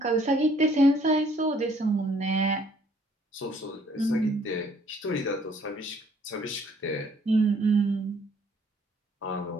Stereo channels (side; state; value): both; normal; correlation 0.62